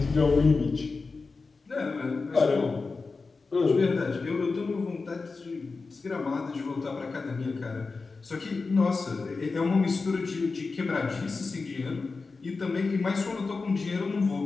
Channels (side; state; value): right; quieter; 4.2 dB